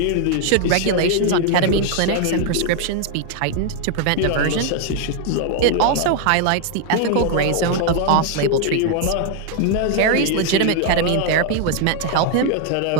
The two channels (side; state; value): both; different; correlation 0.00